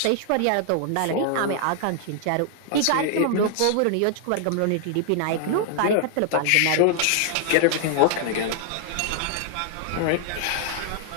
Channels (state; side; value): different; both; correlation 0.00